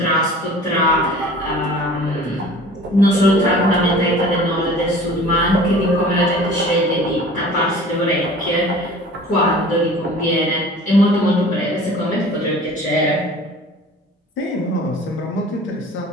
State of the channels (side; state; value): both; normal; correlation 0.44